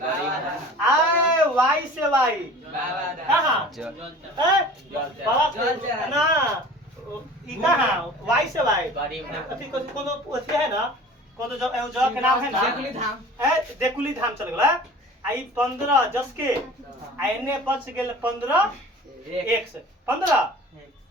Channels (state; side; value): normal; both; correlation 0.42